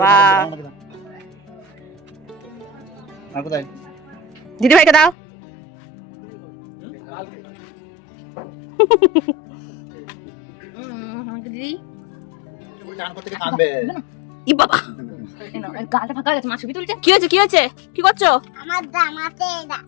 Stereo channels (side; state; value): right; drops out; at 5.2 s